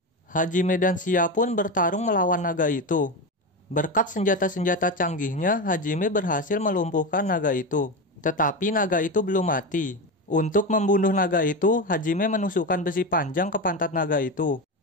Hajime dan Sia pun bertarung melawan naga itu. Berkat senjata-senjata canggihnya, Hajime berhasil melumpuhkan naga itu. Tetapi naga itu belum mati. Untuk membunuh naga itu, Hajime menusukkan besi panjang ke pantat naga itu.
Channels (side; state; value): both; normal; correlation 0.18